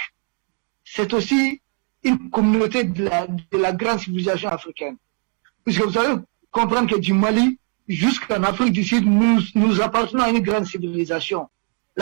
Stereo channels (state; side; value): quieter; left; 39.5 dB